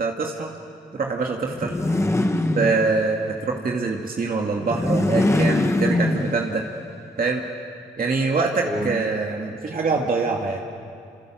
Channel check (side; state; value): both; normal; correlation 0.67